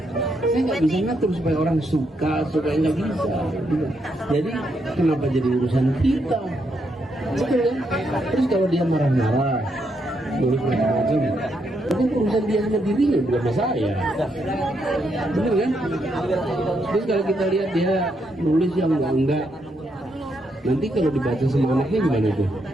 Saya nggak bisa ngatur supaya orang suka nggak bisa. Jadi kenapa jadi urusan kita? Betul kan? Terus kalau dia marah-marah, nulis macam-macam, itu urusan dia sama dirinya, bukan sama saya. Bener kan? Terus kalau kita lihat dia nulis yang enggak, nanti kalau dibaca sama anaknya gimana tuh?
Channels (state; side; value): normal; both; correlation 0.78